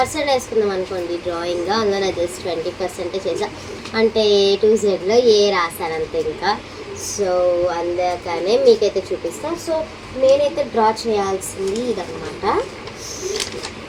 వేసుకుందాం అనుకోండి డ్రాయింగ్, అందులో నా జస్ట్ 20% చేసా, అంటే A to Zలో ఏ రాశానంతే ఇంకా. సో అందుకనే మీకైతే చూపిస్తాను. సో నేనైతే డ్రా చేయాల్సింది ఇదన్నమాట.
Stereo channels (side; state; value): both; identical; correlation 1.00